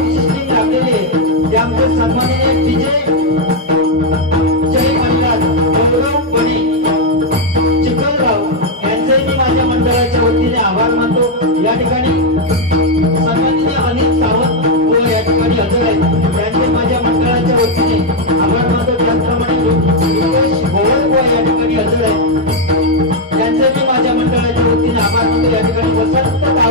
सिस्टीम लागलेली आहे ते आमचे सन्माननीय विजय जय महाराज गौरव बने चिखलराव यांचे मी माझ्या मंडळाच्या वतीने आभार मानतो। या ठिकाणी सन्माननीय अनिल सावंत व या ठिकाणी हजर आहेत त्यांचे माझ्या मंडळाच्या वतीने आभार मानतो। त्याचप्रमाणे रुपेश गोवळ व या ठिकाणी हजर आहेत त्यांचे मी माझ्या मंडळाच्या वतीने आभार मानतो। या ठिकाणी वसंत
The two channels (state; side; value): normal; both; correlation 0.01